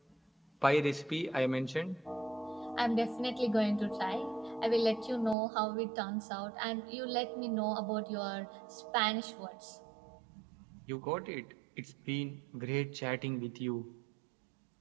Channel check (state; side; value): drops out; left; at 5.4 s